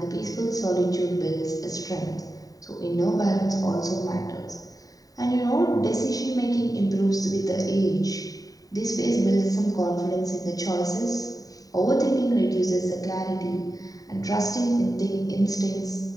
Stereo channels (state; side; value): late; right; 0.18 ms